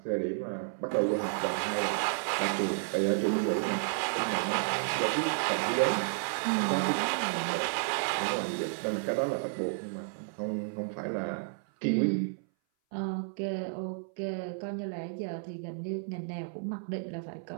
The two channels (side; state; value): left; silent; 57 dB below the other